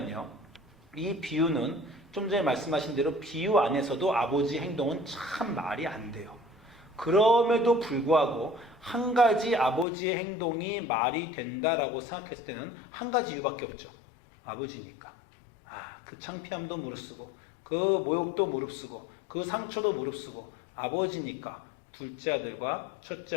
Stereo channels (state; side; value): drops out; right; at 9.9 s